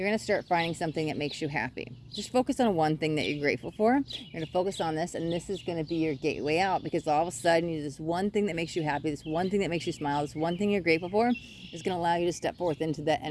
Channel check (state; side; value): identical; both; correlation 1.00